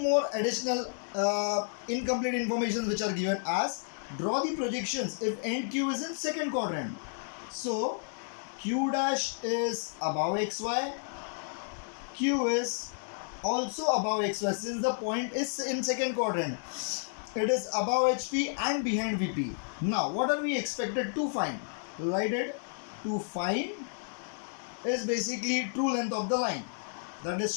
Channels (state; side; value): silent; right; digital silence